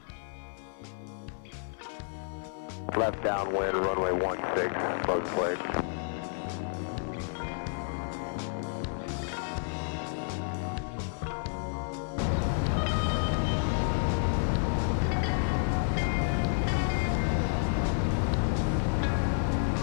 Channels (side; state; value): right; silent; digital silence